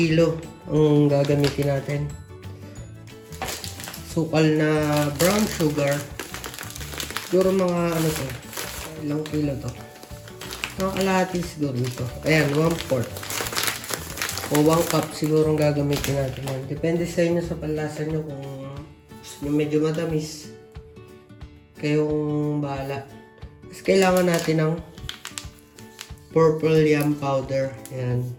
ang gagamitin natin. Sukal na brown sugar. Siguro mga ano to. Ilang kilo to. Mga kalahati siguro ito. Ayan, 1/4. O 1 cup siguro ang gagamitin natin yan. Depende sa inyo sa panlasa nyo kung gusto nyo medyo matamis. Kayong bahala. Tapos kailangan natin ng purple yam powder. Ayan.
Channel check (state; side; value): identical; both; correlation 1.00